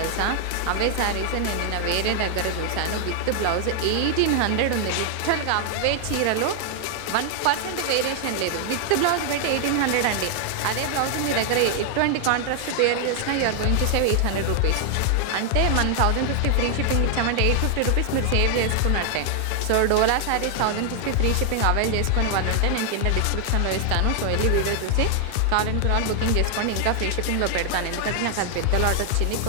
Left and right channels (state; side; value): different; both; correlation 0.00